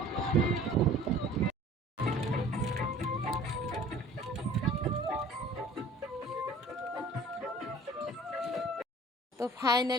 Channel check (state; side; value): normal; both; correlation 0.49